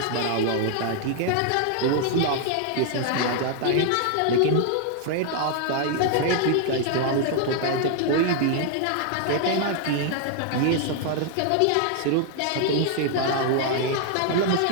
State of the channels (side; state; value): both; different; correlation 0.00